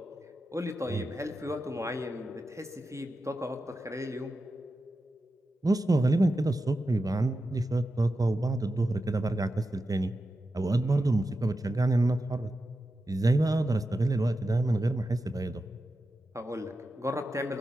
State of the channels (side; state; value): both; normal; correlation 0.90